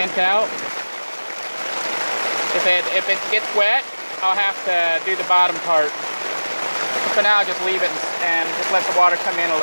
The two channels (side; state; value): both; inverted; correlation -1.00